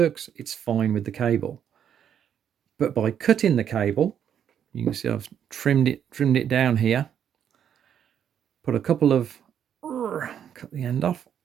It's fine with the cable. But by cutting the cable, you can see I've trimmed it down here. Put a couple of, cut the end off.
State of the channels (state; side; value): quieter; left; 9.0 dB